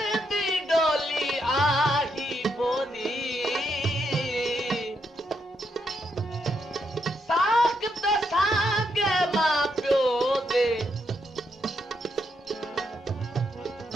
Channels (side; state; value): both; normal; correlation 0.79